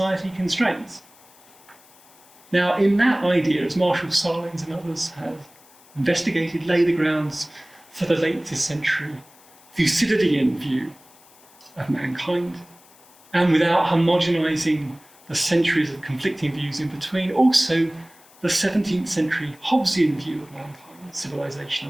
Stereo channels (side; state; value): left; noise; hiss, 26 dB below the sound